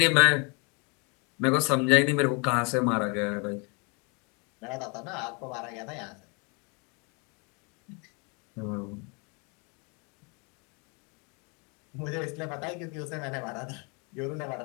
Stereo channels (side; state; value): right; quieter; 32.9 dB